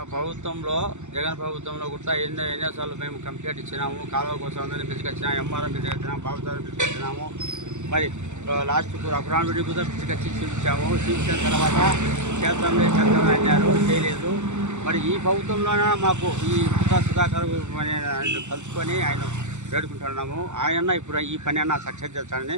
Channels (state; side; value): late; left; 0.84 ms